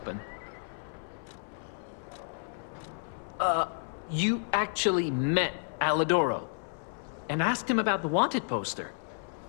You actually met Alidoro and asked him about the wanted poster.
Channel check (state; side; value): silent; right; 57 dB below the other